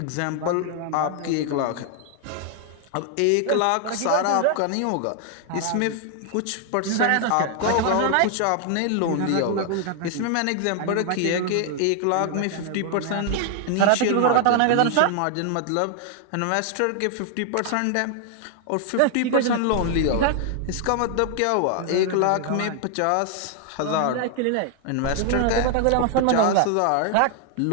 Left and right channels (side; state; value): both; different; correlation 0.00